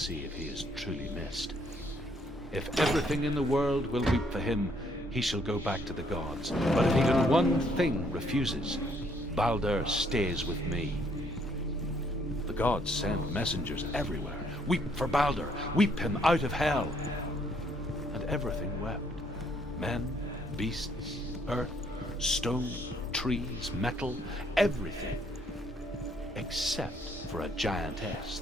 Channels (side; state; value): both; normal; correlation 0.68